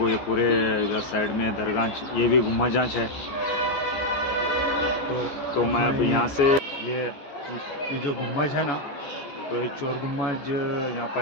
ये पूरे इधर साइड में दरगाह, ये भी गुम्बजांच है। तो मैं अब यहाँ से ये जो गुम्बज है ना, तो ये चोर गुम्बज, यहाँ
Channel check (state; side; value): late; right; 14 ms